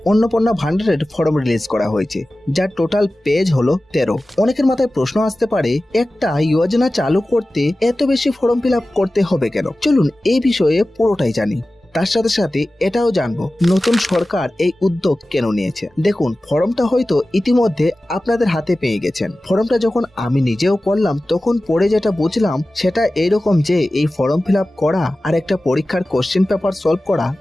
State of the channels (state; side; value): normal; both; correlation 0.96